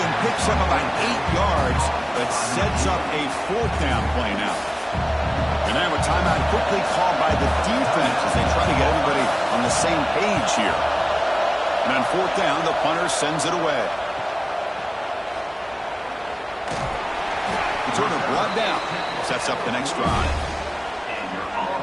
picks up about 8 yards, but sets up a 4th down play now. And now a timeout quickly called by the defense as they try to get everybody on the same page here. And on 4th down, the punter sends it away. Returner brought down. Sets up the next drive.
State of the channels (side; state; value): both; identical; correlation 1.00